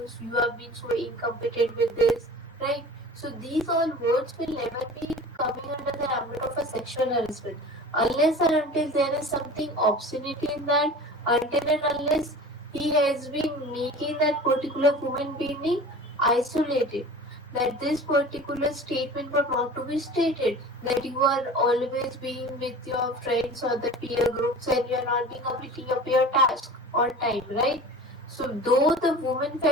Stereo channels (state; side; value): normal; both; correlation 0.38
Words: you have been so incompetent with this, right? So these all words will never be coming under the ambit of a sexual harassment unless and until there is something obscenity in that, until and unless he has been making that particular human being isolated. That this particular statement was not to be stated, that you are always being with your friends or the peer groups and you are not being completing your peer task on time, right? So though the woman